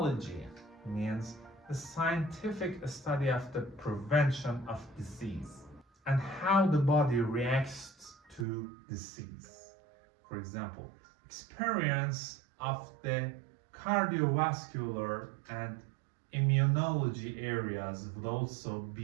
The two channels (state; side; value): drops out; left; at 8.5 s